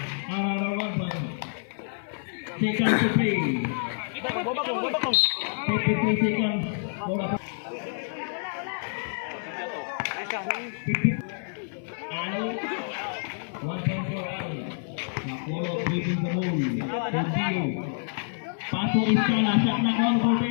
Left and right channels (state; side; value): silent; right; 60 dB below the other